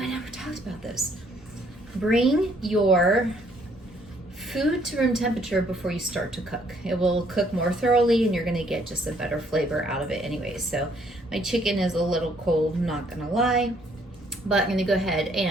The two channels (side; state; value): both; normal; correlation 0.66